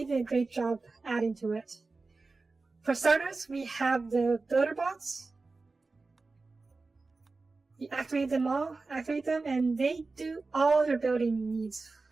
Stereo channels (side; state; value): left; quieter; 3.8 dB